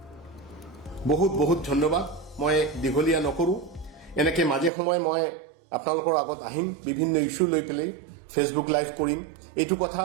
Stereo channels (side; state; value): left; drops out; at 4.7 s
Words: বহুত বহুত ধন্যবাদ। মই দীঘলীয়া নকৰো, এনেকে মাজে সময়ে মই আপোনালোকৰ আগত আহিম, বিভিন্ন ইস্যু লৈ পেলাই ফেচবুক লাইভ কৰিম। এইটো কথা